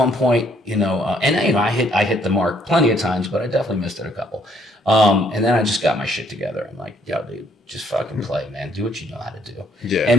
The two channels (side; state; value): both; normal; correlation 0.66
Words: point, I hit the mark plenty of times, but I definitely missed it a couple. And then I just got my shit together. I'm like, yo, dude, just fucking play, man. Do what you know how to do. Yeah.